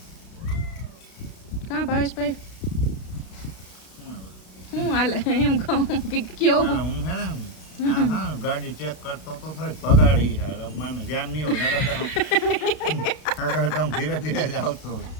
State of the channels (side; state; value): right; late; 32 ms